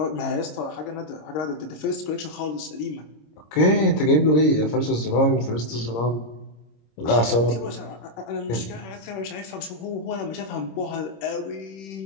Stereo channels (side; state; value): right; late; 26 ms